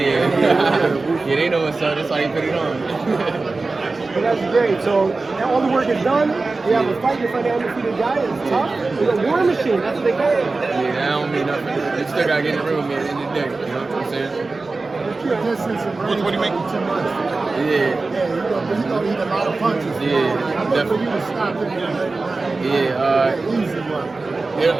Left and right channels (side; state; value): left; quieter; 3.6 dB